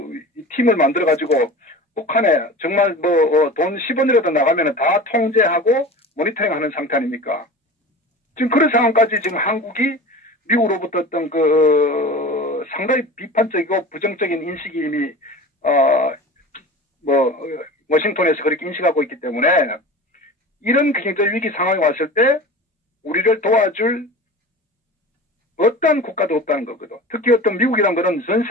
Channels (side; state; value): both; normal; correlation 0.35